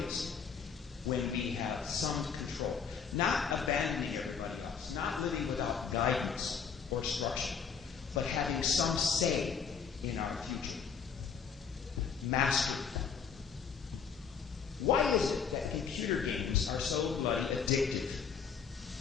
when we have some control. Not abandoning everybody else, not living without guidance or structure, but having some say in our future. Mastery. Why is it that computer games are so bloody addictive?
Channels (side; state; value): right; quieter; 6.5 dB